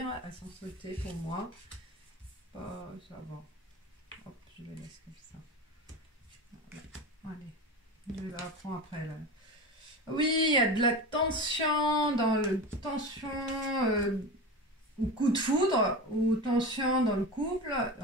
Elles sont sautées pour moi. Ça va. Hop, je les laisse comme ça. Allez, je la reprends après. Là. Oui, il y a de la tension dans le tension ou coup de foudre ou tension dans le couple.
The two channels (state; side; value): normal; both; correlation 0.27